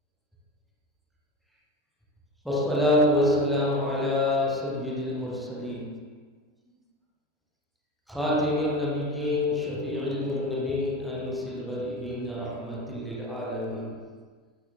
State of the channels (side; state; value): both; normal; correlation 0.28